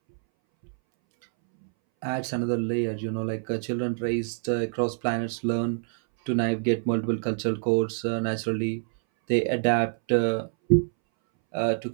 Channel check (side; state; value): left; silent; 61 dB below the other